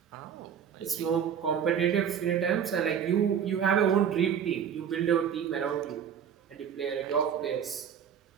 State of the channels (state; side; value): quieter; left; 8.2 dB